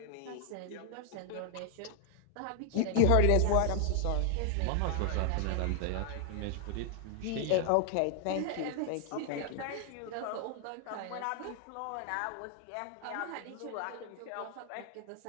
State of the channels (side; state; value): both; different; correlation 0.00